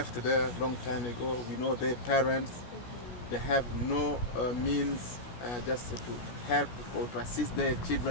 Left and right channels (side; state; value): right; late; 16 ms